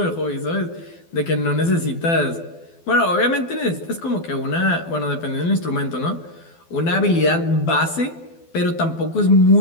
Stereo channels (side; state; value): right; late; 12 ms